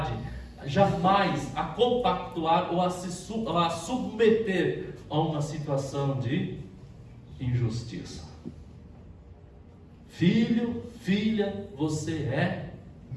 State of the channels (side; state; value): both; identical; correlation 1.00